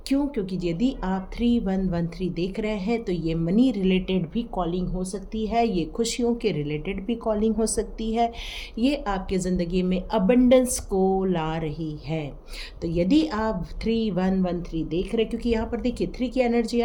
क्यों? क्योंकि यदि आप 3113 देख रहे हैं तो ये मनी रिलेटेड भी कॉलिंग हो सकती है, ये खुशियों के रिलेटेड भी कॉलिंग हो सकती है, ये आपके ज़िंदगी में अबंडेंस को ला रही है। तो यदि आप 3113 देख रहे हैं, क्योंकि यहाँ पर देखिए 3 की एनर्जी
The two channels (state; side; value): identical; both; correlation 1.00